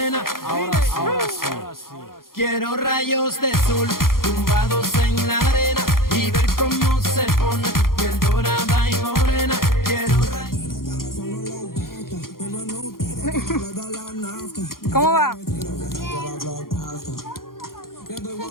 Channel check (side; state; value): right; late; 0.92 ms